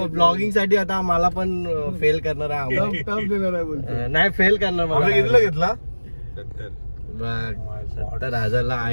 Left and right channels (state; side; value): inverted; both; correlation -1.00